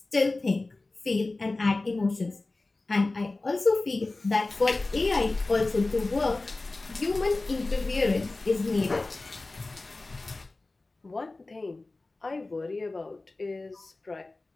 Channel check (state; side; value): quieter; right; 3.2 dB